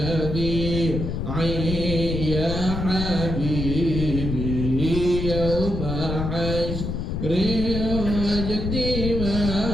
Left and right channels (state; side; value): noise; left; rumble, 3 dB below the sound